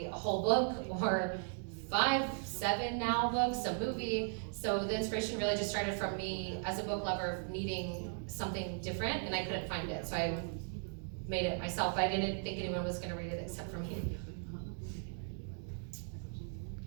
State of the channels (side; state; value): left; silent; 53 dB below the other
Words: a whole book or 5, 7 now books, a movie. So the inspiration really just started from me as a book lover needing something different, and I couldn't find it. So I made it myself. I didn't think anyone was going to read it except for me.